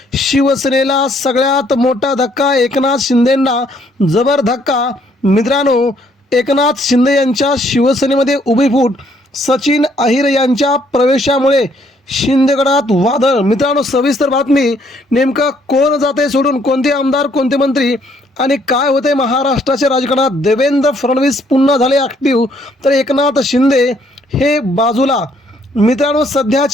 शिवसेनेला सगळ्यात मोठा धक्का, एकनाथ शिंदेंना जबर धक्का। मित्रांनो, एकनाथ शिंदे यांच्या शिवसेनेमध्ये उभी फूट, सचिन अहिर यांच्या प्रवेशामुळे शिंदेगडात वादळ। मित्रांनो, सविस्तर बातमी, नेमका कोण जाते सोडून, कोणते आमदार, कोणते मंत्री आणि काय होते महाराष्ट्राच्या राजकारणात। देवेंद्र फडणवीस पुन्हा झाले ॲक्टिव्ह तर एकनाथ शिंदे हे बाजूला। मित्रांनो,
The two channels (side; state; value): both; normal; correlation 0.67